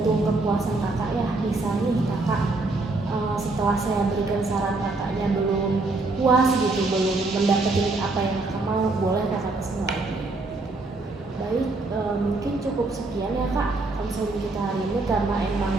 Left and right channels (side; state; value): left; quieter; 3.3 dB